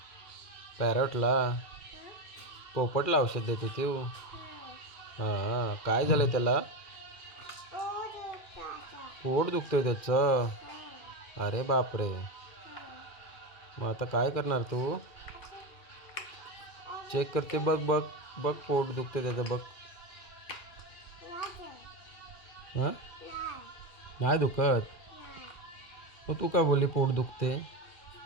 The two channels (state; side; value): late; right; 2.4 ms